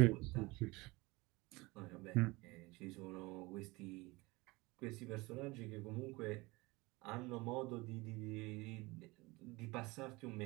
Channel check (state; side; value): quieter; left; 23.1 dB